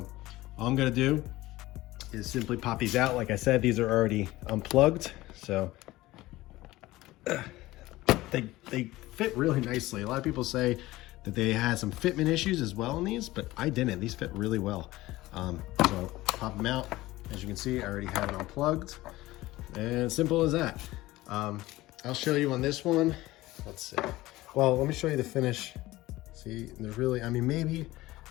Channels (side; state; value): right; quieter; 17.9 dB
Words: all I'm gonna do is simply pop these out. Like I said, these are already unplugged, so they fit really nicely. A lot of people say that they had some fitment issues as well in these, but I didn't. These fit really well. So pop them out. As you can see, I already have it unplugged, and simple as that. I'll show you on this one. Let's see. Well, let me show you the finish. See, there's really,